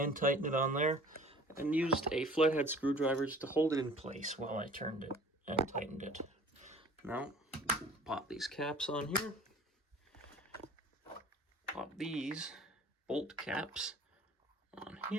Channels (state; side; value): normal; both; correlation 0.47